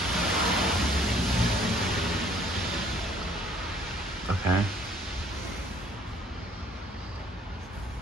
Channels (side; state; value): both; normal; correlation 0.59